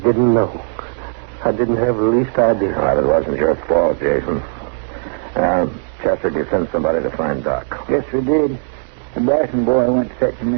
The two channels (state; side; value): silent; left; digital silence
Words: know. I didn't have the least idea. Well, it wasn't your fault, Jason. Chester, did you send somebody to find Doc? Yes, we did. The Bryson boy went to fetch him,